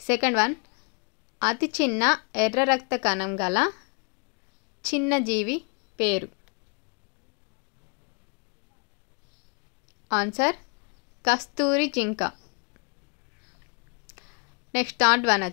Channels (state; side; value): quieter; right; 34.7 dB